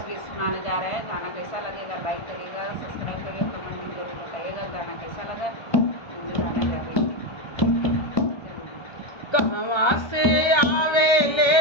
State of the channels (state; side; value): late; right; 1.5 ms